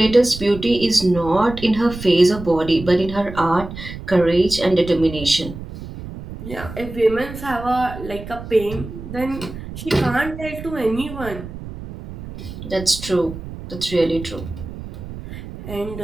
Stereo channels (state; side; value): noise; right; rumble, 12 dB below the sound